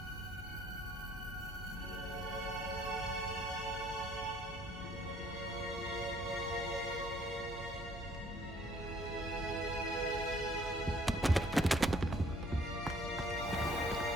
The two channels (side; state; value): both; normal; correlation 0.61